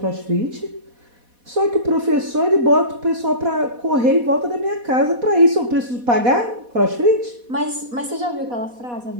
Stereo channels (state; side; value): late; left; 4.1 ms